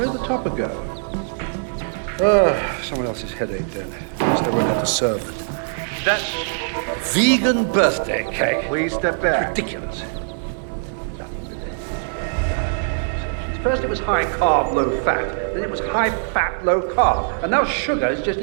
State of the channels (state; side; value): silent; left; digital silence